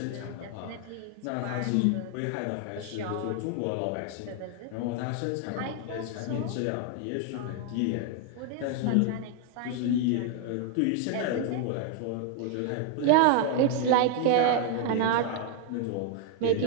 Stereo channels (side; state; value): both; different; correlation 0.01